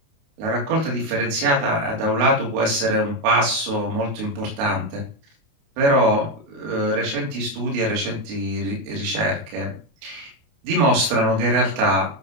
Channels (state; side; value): late; left; 28 ms